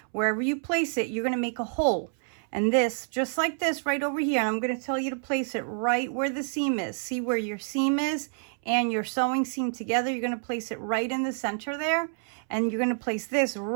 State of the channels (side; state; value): left; silent; 59 dB below the other